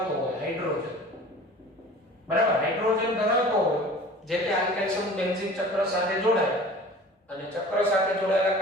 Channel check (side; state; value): both; normal; correlation 0.43